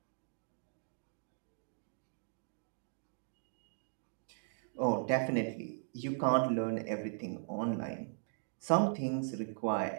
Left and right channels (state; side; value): silent; left; digital silence